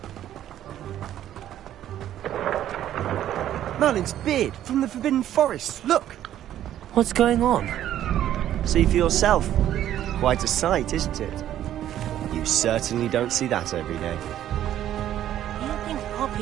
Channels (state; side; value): quieter; left; 11.7 dB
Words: Merlin's beard from the Forbidden Forest. Look! What's going on? See for yourself. Quite a sight, isn't it? You certainly don't see that every day. Do you think